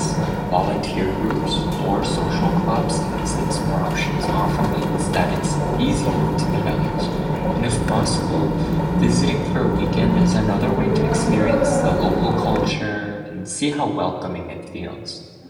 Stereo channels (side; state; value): both; identical; correlation 1.00